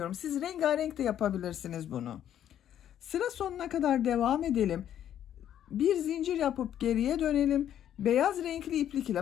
Siz rengarenk de yapabilirsiniz bunu. Sıra sonuna kadar devam edelim. Bir zincir yapıp geriye dönelim. Beyaz renkli iplik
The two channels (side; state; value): right; quieter; 10.6 dB